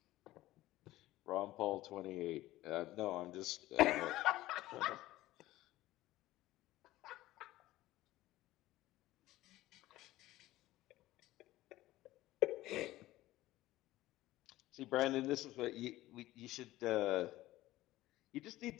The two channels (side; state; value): right; quieter; 16.5 dB